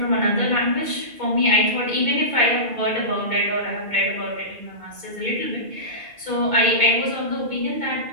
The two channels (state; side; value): late; left; 2.2 ms